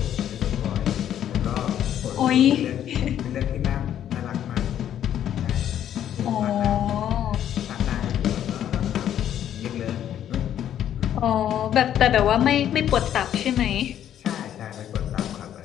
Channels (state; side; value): quieter; right; 10.5 dB